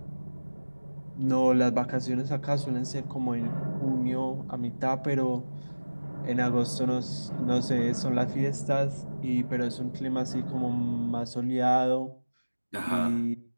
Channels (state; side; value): inverted; both; correlation -1.00